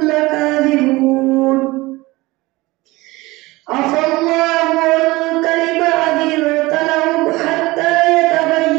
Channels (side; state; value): left; quieter; 21.0 dB